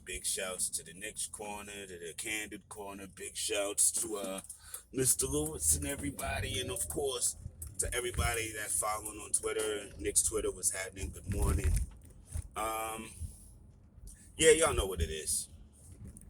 Big shouts to the next corner, to the Candid corner. Big shouts to Mr. Lewis and everybody. And of course, to everybody that's following on Twitter. Nick's Twitter was happening. Good morning. Um, yeah, y'all know what it is.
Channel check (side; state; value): both; identical; correlation 1.00